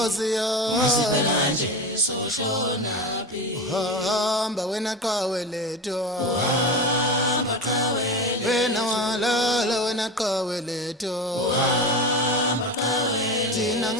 yami Hamba wena qawe letho Wena walala wena qawe letho Thina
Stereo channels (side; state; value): both; normal; correlation 0.25